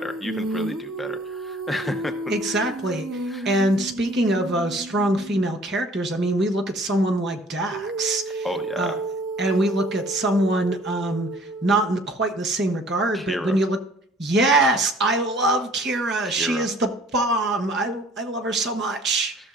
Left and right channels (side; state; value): both; normal; correlation 0.54